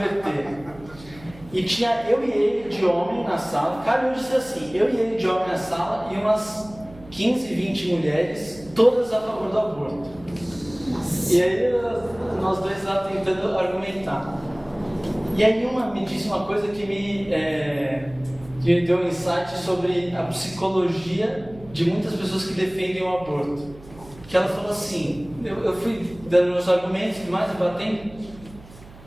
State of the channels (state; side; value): noise; right; hum, 20 dB below the sound